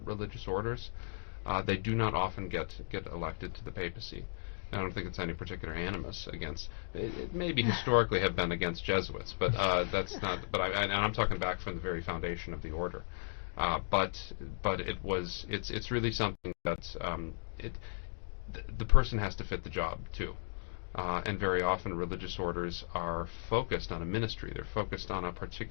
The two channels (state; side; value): silent; right; digital silence